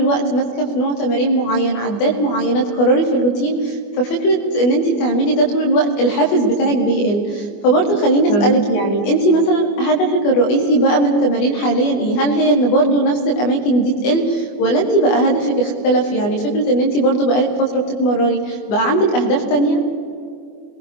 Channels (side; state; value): right; late; 24 ms